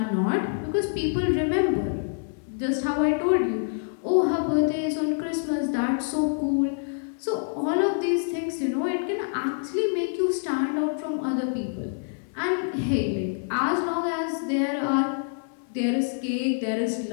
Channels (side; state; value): right; silent; digital silence